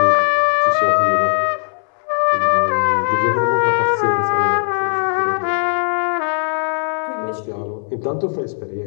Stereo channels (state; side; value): silent; right; 67 dB below the other